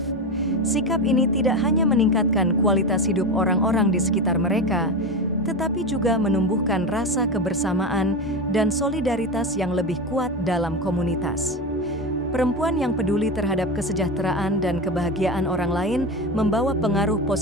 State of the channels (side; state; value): both; normal; correlation 0.20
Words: Sikap ini tidak hanya meningkatkan kualitas hidup orang-orang di sekitar mereka, tetapi juga menumbuhkan rasa kebersamaan dan solidaritas yang lebih kuat dalam komunitas. Perempuan yang peduli terhadap kesejahteraan dan kebahagiaan orang lain membawa pengaruh